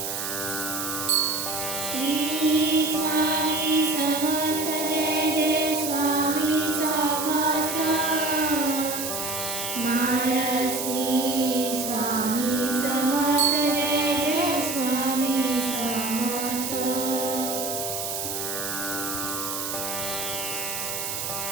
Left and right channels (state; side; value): noise; right; hiss, 4 dB below the sound